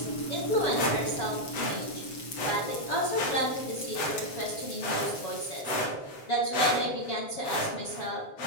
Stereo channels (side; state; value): right; late; 7.4 ms